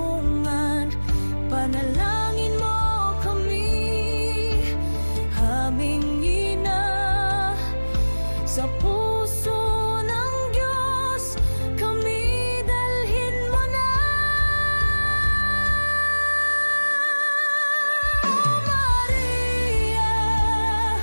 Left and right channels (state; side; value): inverted; both; correlation -1.00